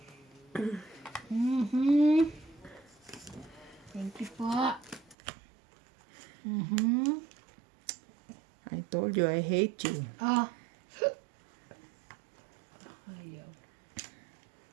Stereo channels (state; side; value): drops out; left; at 5.2 s